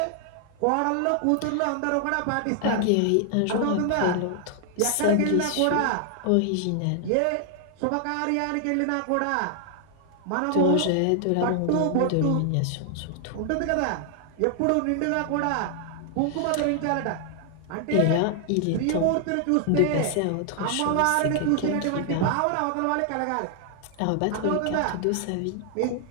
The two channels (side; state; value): both; different; correlation 0.00